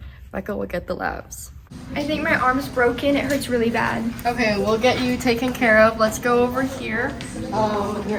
Becca will get the labs. I think my arm's broken. It hurts really bad. Okay, we'll get you taken care of. Let's go over here.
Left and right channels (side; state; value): both; identical; correlation 1.00